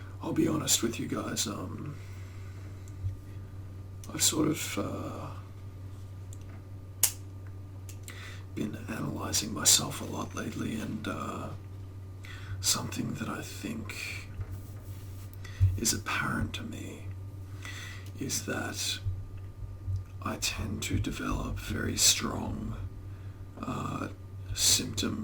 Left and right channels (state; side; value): identical; both; correlation 1.00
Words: I'll be honest with you guys, I've sort of been analysing myself a lot lately, and something that I think is apparent to me is that I tend to develop very strong